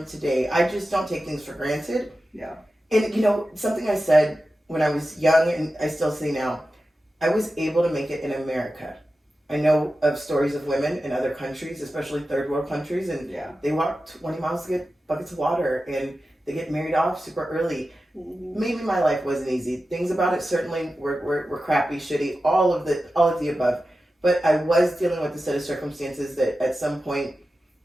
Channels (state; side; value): normal; both; correlation 0.93